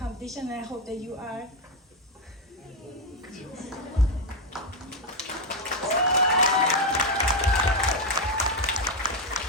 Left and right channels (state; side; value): normal; both; correlation 0.06